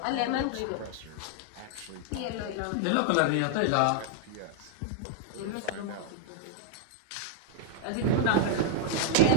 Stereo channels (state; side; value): different; both; correlation 0.00